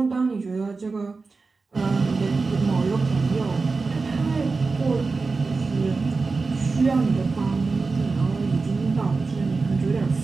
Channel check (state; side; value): quieter; left; 4.1 dB